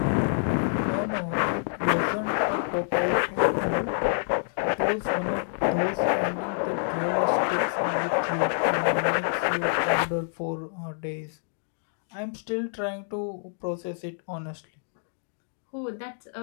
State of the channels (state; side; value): silent; right; digital silence